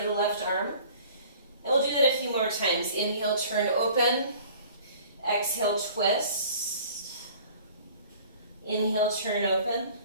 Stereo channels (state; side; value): inverted; both; correlation -0.49